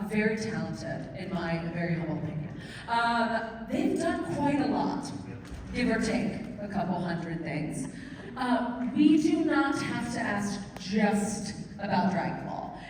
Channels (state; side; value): identical; both; correlation 1.00